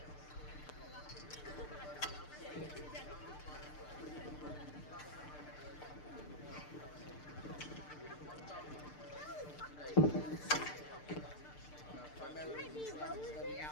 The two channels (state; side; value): late; right; 6.7 ms